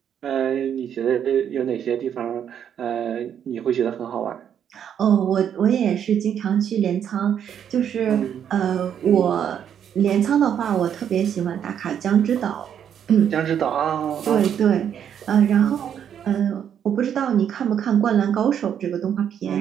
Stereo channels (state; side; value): quieter; left; 8.9 dB